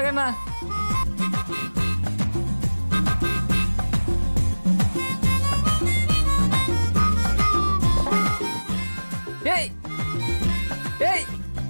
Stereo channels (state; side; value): inverted; both; correlation -1.00